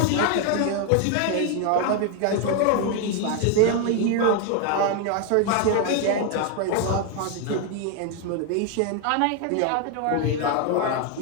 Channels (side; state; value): both; different; correlation 0.00